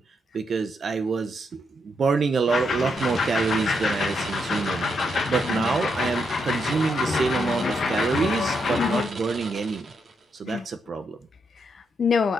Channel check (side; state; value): both; normal; correlation 0.80